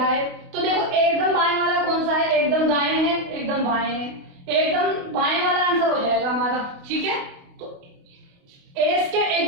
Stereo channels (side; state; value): left; late; 28 ms